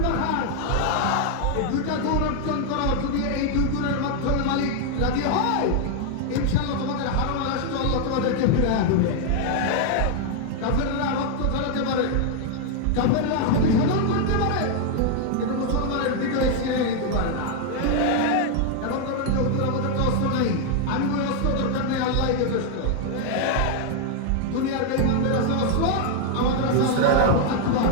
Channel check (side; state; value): both; different; correlation 0.00